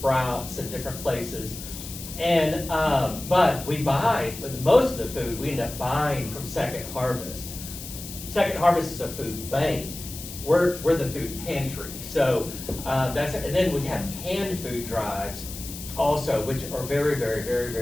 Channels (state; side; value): noise; left; hiss, 11 dB below the sound